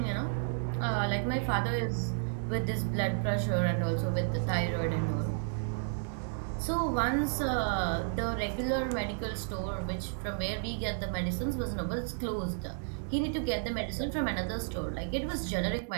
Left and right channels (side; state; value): left; silent; digital silence